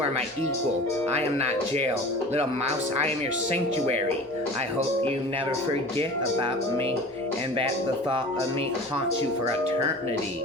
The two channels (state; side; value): normal; both; correlation 0.40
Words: my equal. I am not jail. Little mouse, I am your sanctuary. I hope you never forget about me, and that the thought of me haunts you for eternity.